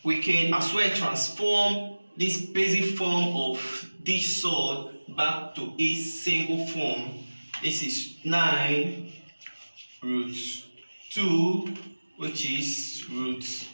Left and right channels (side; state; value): both; inverted; correlation -1.00